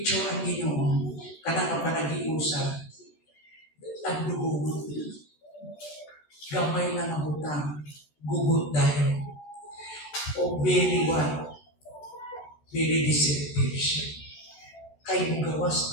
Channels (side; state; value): right; late; 14 ms